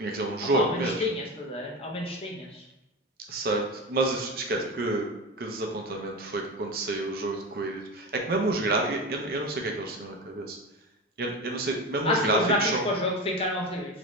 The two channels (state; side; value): normal; both; correlation 0.24